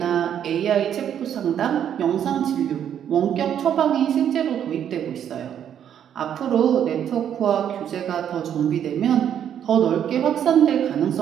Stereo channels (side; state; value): left; quieter; 9.4 dB